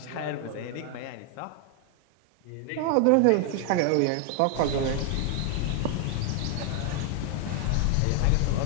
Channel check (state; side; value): different; both; correlation 0.00